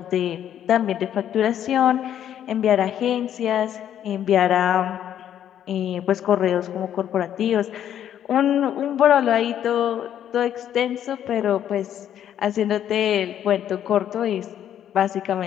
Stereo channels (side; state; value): right; quieter; 10.3 dB